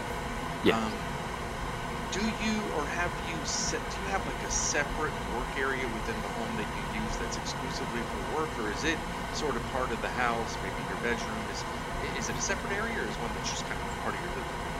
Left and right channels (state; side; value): identical; both; correlation 1.00